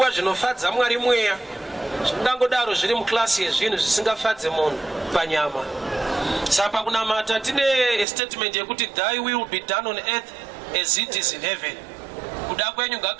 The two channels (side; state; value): left; drops out; at 8.1 s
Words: zvinofadza Mwari mweya zvingangodaro zviri muklasi yezvinhu zvisingafadze munhu panyama. Saka kunamata tine statement yekuti thy will be done on earth as it is in heaven. Kuda kwenyu